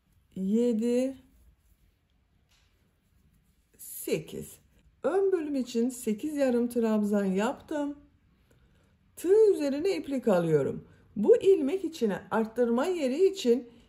7, 8. Ön bölüm için 8 yarım trabzan yaptım. Tığ üzerine iplik alıyorum. Bu ilmek içine arttırma yeri için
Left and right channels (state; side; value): identical; both; correlation 1.00